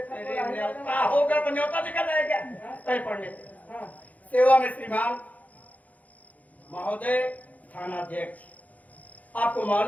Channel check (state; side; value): late; right; 0.074 ms